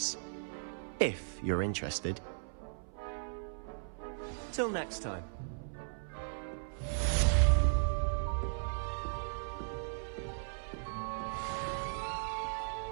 If you're interested. Till next time.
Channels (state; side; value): silent; left; 53 dB below the other